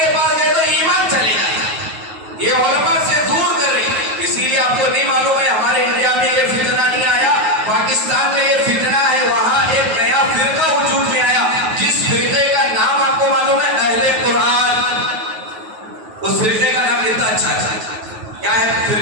پاس گئے تو ایمان چلے جاتا، یہ علماء سے دور کر رہی، اسی لیے آپ کو نہیں معلوم ہے ہمارے انڈیا میں یہ فتنہ نہیں آیا، پاکستان میں یہ فتنہ ہے، وہاں ایک نیا فرقہ وجود میں آیا، جس فرقے کا نام آپ کو معلوم ہے؟ اہل قرآن، اس فرقے کا نام کتنا اچھا ہے، کیا ہے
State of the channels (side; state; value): left; late; 9.3 ms